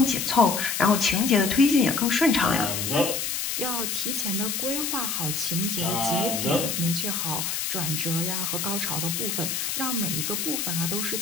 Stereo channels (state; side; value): noise; left; hiss, 2 dB below the sound